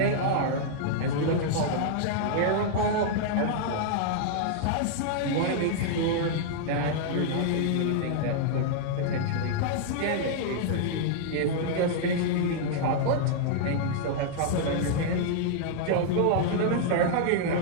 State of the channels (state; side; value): different; both; correlation -0.01